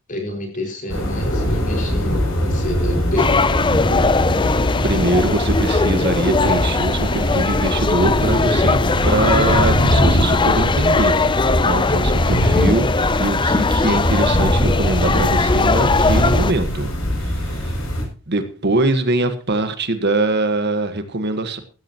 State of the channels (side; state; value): both; normal; correlation 0.49